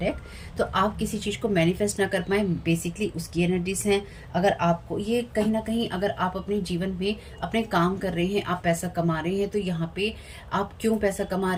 तो आप किसी चीज़ को मैनिफेस्ट ना कर पाए, बेसिकली उसकी एनर्जीज हैं। अगर आपको ये कहीं ना कहीं, अगर आप अपने जीवन में अपने काम कर रहे हैं, आप पैसा कमा रहे हैं, तो यहाँ पे आप क्यों पैसा कमा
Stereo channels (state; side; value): identical; both; correlation 1.00